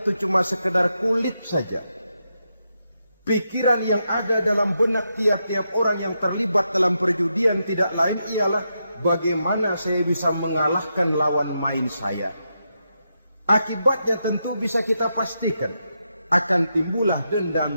cuma sekedar kulit saja. Pikiran yang ada dalam benak tiap-tiap orang yang terlibat dalam perjudian tidak lain ialah bagaimana saya bisa mengalahkan lawan main saya. Akibatnya tentu bisa kita pastikan akan timbullah dendam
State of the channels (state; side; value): inverted; both; correlation -0.84